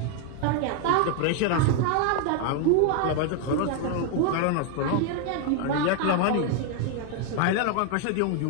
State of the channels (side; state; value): both; different; correlation 0.01